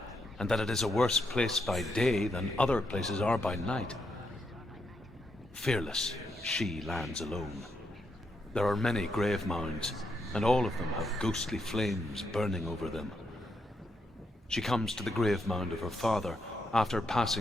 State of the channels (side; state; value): both; normal; correlation 0.80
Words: and that it is a worse place by day than other places are by night. Fearless, she lands alone. There are many grave mounds, and all of them have ghostly flames burning over them. She comes to the grave mound of her father after